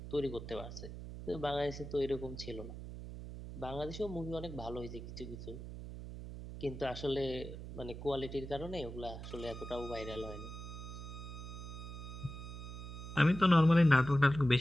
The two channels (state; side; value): noise; right; hum, 10 dB below the sound